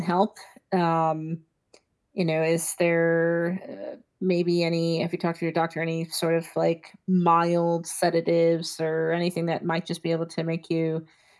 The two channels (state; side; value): identical; both; correlation 1.00